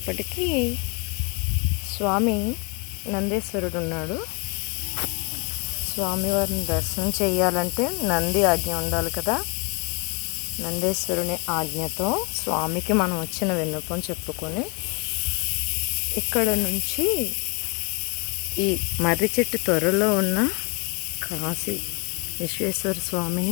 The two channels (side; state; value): right; quieter; 32.4 dB